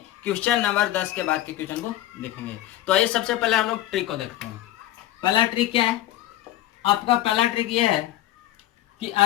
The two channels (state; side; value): quieter; right; 14.1 dB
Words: क्वेश्चन नंबर 10 के बाद के क्वेश्चन को देखेंगे। तो आइए सबसे पहले हम लोग ट्रिक को देखते हैं। पहला ट्रिक क्या है? आपका पहला ट्रिक ये है कि